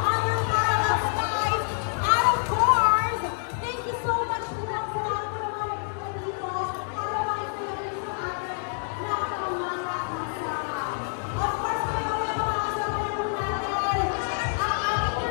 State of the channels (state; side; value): silent; right; digital silence